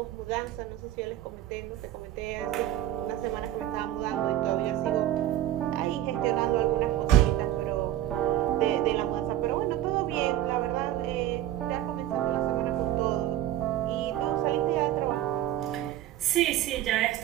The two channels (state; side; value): quieter; left; 13.0 dB